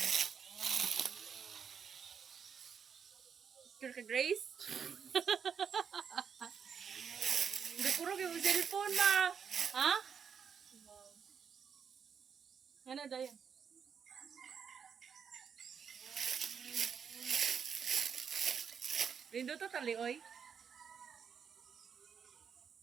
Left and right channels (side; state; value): left; quieter; 7.0 dB